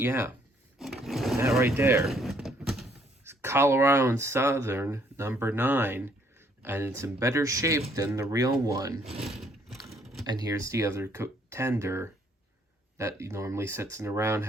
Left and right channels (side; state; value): both; normal; correlation 0.66